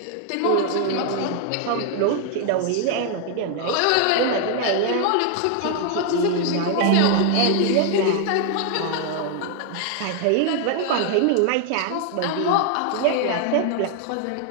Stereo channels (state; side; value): different; both; correlation 0.00